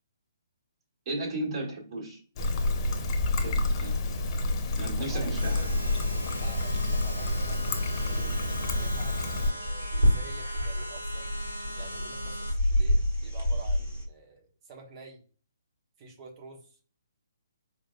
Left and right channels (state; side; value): inverted; both; correlation -0.77